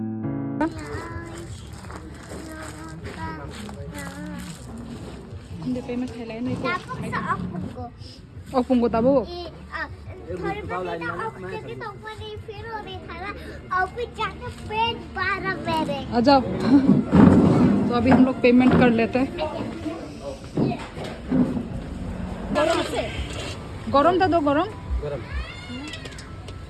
पेमेंट खेला नहीं तो Opung ko tabo. आ जाओ। तो अभी हम लोग पेमेंट कर लेते हैं। गरम था, दो गरम।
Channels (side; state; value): both; identical; correlation 1.00